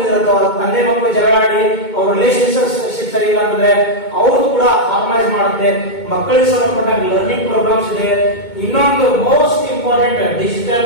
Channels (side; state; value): right; late; 2.2 ms